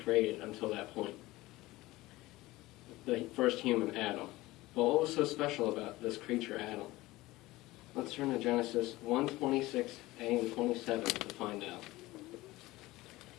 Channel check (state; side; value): quieter; right; 18.9 dB